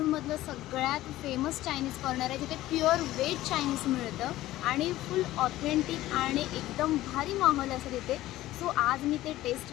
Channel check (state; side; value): quieter; right; 15.6 dB